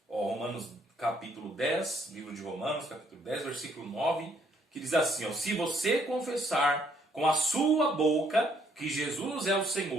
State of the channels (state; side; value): normal; both; correlation 0.68